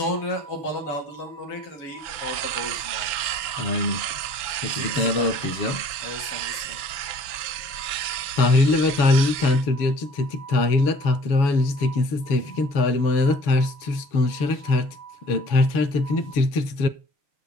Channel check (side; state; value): right; late; 5.9 ms